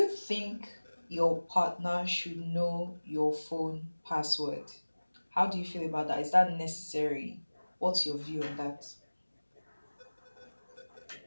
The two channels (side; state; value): both; inverted; correlation -1.00